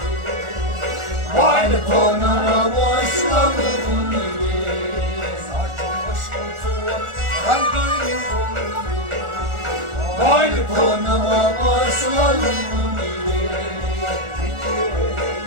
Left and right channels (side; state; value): left; late; 1.4 ms